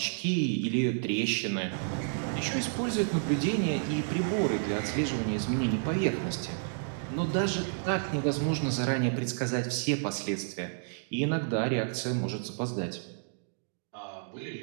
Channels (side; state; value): left; silent; digital silence